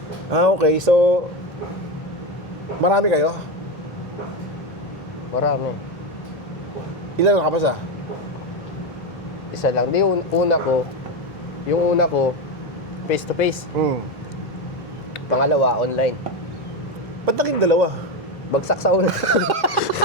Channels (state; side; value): normal; both; correlation 0.14